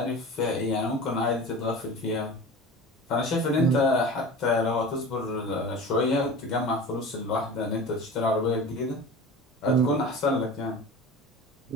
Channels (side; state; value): both; normal; correlation 0.34